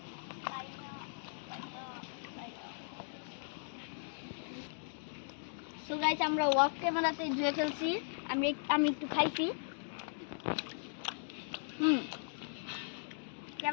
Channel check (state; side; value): silent; right; digital silence